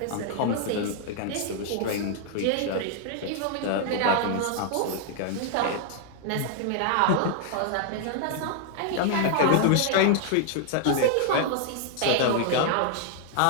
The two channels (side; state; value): both; different; correlation 0.00